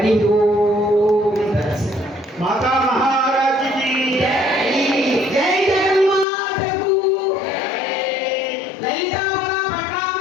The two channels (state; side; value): drops out; right; at 6.2 s